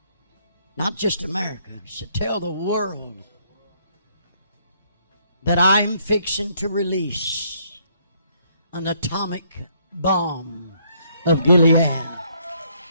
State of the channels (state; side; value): inverted; both; correlation -0.68